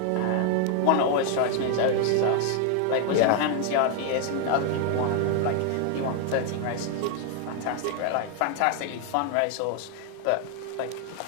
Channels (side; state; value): both; different; correlation 0.00